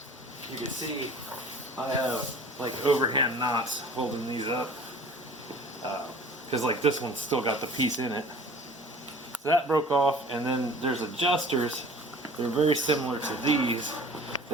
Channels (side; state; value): both; normal; correlation 0.45